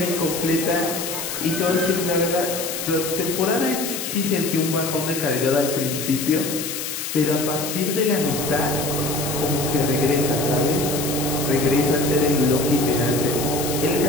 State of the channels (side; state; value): left; noise; hiss, 5 dB below the sound